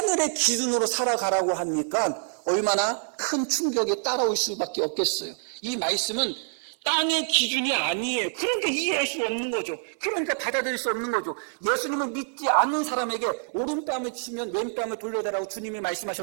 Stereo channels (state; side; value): silent; left; 61 dB below the other